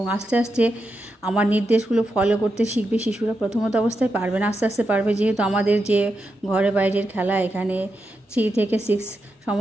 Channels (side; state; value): both; normal; correlation 0.86